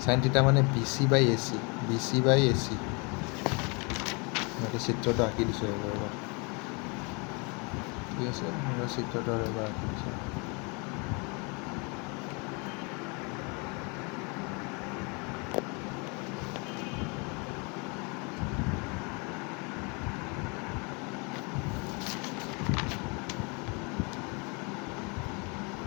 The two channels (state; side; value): quieter; right; 31.4 dB